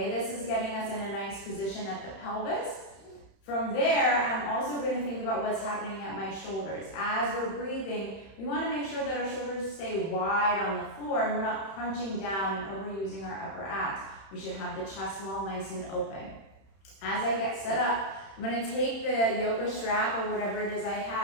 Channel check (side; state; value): right; late; 31 ms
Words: this is getting us in a nice position at the pelvis. From there, I'm also going to think about what's happening at my shoulders. As we're breathing, we want to make sure that our shoulders stay wide on the floor and we're not crunching down and overusing our upper abs. We should have the chest wall nice and open. As I get set up, I'm going to take the yoga strap or whatever it is I